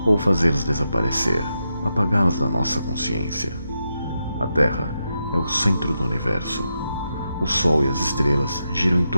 ou fazê-los desaparecer, apagá-los da nossa consciência. A Terra é o centro do universo. O Sol e as estrelas giram em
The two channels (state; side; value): inverted; both; correlation -0.86